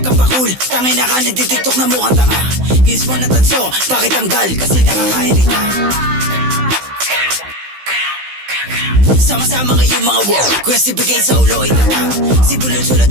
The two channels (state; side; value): late; left; 16 ms